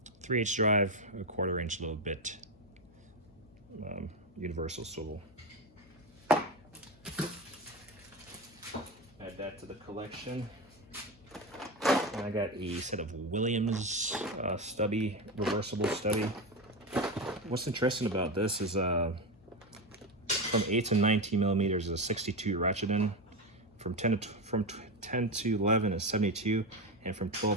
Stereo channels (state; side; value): noise; left; hum, 26 dB below the sound